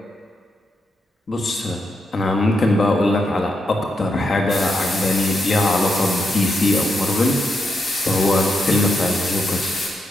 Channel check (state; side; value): normal; both; correlation 0.83